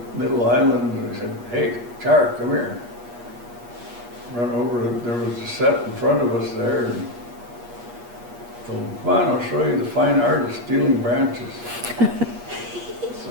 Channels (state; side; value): late; left; 8.4 ms